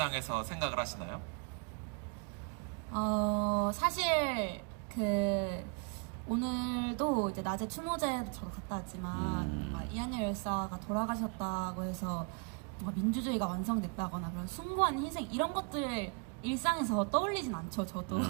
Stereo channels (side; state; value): left; quieter; 36.4 dB